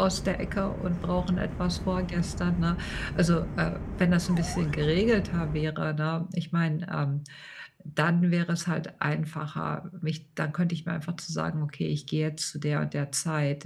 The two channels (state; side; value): identical; both; correlation 1.00